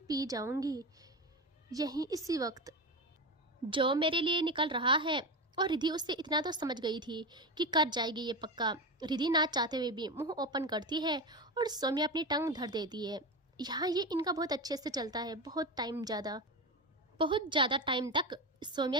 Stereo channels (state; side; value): normal; both; correlation 0.20